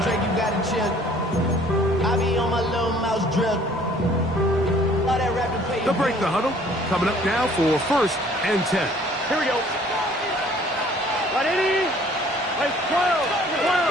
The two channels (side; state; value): both; normal; correlation 0.56